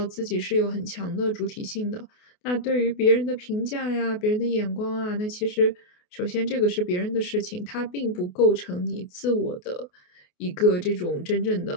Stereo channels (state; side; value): late; right; 28 ms